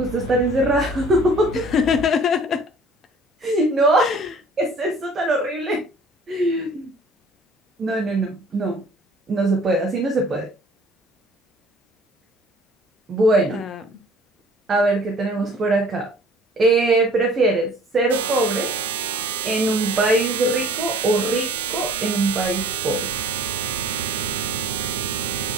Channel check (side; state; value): both; normal; correlation 0.50